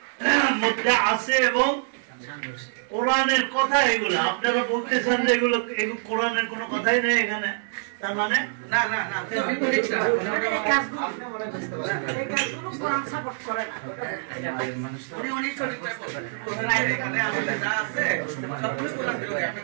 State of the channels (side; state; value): left; silent; digital silence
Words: মধ্যে আছে এবং কোরআনের কথা এগুলো। আপনারা বলতেছেন যে এগুলো কোরআনের কোনো কথাই নেই এখানে, তার মানে না না না, এই কাজগুলো কোরআন সাপোর্ট করে না। উনি উনি সঠিকটা বলবেন, কোরআন এখানে আমাদের যা আছে সবগুলো কোরআন বিরোধী।